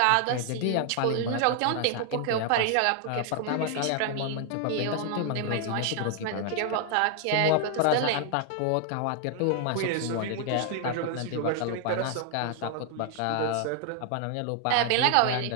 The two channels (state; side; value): different; both; correlation 0.00